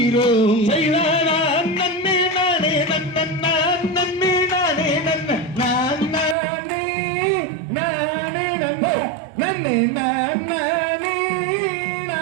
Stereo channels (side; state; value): left; drops out; at 6.4 s